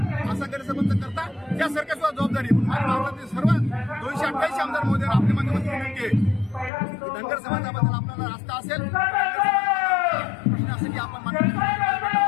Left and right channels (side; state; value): right; drops out; at 6.7 s